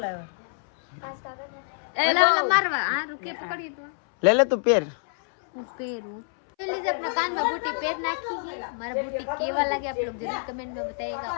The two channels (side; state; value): right; silent; 60 dB below the other